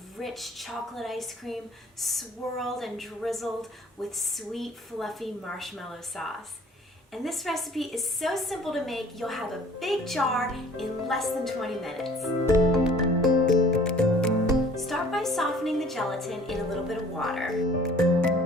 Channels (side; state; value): both; normal; correlation 0.52